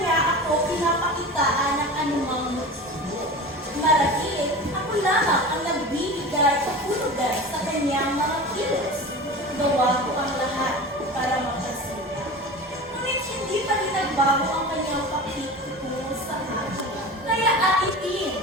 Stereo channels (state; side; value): normal; both; correlation 0.33